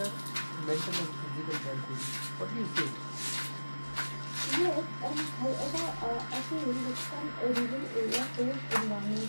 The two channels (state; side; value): inverted; both; correlation -1.00